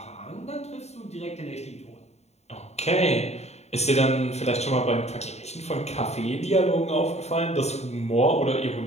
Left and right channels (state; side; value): late; right; 0.32 ms